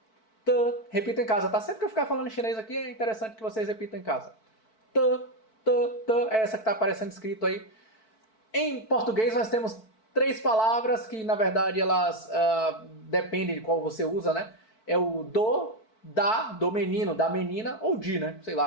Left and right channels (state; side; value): late; right; 4.5 ms